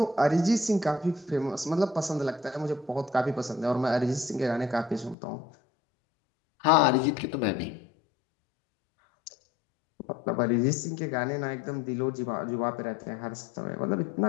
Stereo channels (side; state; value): right; drops out; at 5.2 s